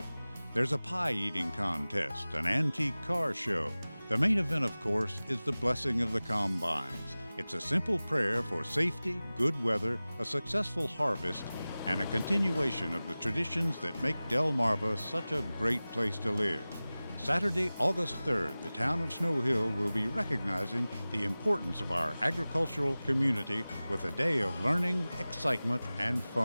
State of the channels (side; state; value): both; inverted; correlation -0.98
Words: There's a pie-eating contest, an antique car show. The main event, of course, is the Blessing of the Combines. It's a simple prayer for safety, good weather, a successful harvest, and a continuation of the traditions that make Delmarva such a great place to live. Saturday, August 3rd, the town of Snow Hill will be recognizing the importance of our agricultural community with a day of learning, excitement, and